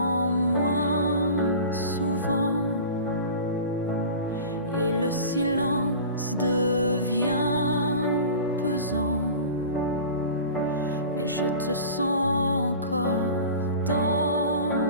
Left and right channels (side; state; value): both; inverted; correlation -0.37